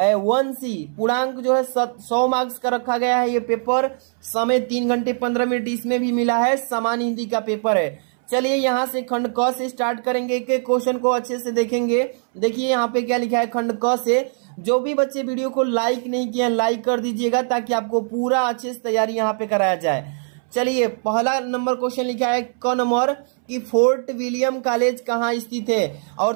पूर्णांक जो है 100 मार्क्स का रखा गया है। ये पेपर समय 3 घंटे 15 मिनट इसमें भी मिला है। सामान्य हिंदी का पेपर है। चलिए यहाँ से खंड क से स्टार्ट करेंगे। एक एक क्वेश्चन को अच्छे से देखेंगे। देखिए यहाँ पे क्या लिखा है खंड क से। जो भी बच्चे वीडियो को लाइक नहीं किए लाइक कर दीजिएगा ताकि आपको पूरा अच्छे से तैयारी यहाँ पे कराया जाए। चलिए पहला नंबर क्वेश्चन लिखा है क नंबर कि फोर्ट विलियम कॉलेज कहाँ स्थित है।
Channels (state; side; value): silent; left; 65 dB below the other